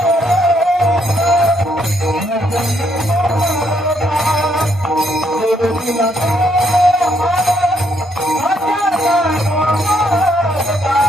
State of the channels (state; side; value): normal; both; correlation 0.72